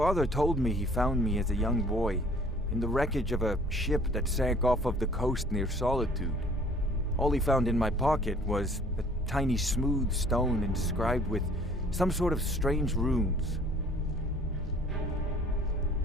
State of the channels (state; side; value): normal; both; correlation 0.54